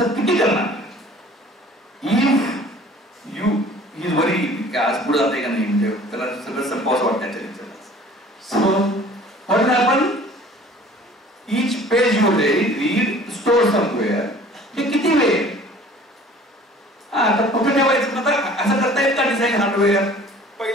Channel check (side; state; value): both; normal; correlation 0.49